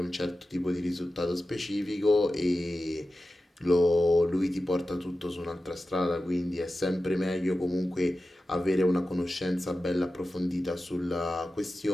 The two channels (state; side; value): normal; both; correlation 0.94